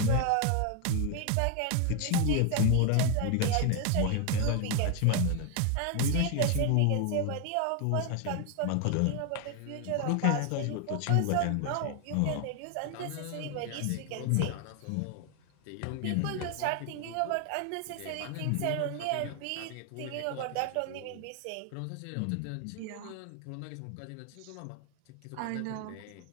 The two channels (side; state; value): both; different; correlation 0.01